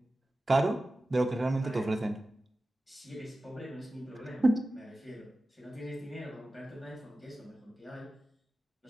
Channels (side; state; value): both; normal; correlation 0.95